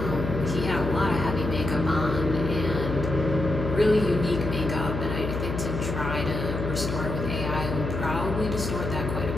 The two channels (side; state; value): left; noise; hum, 4 dB below the sound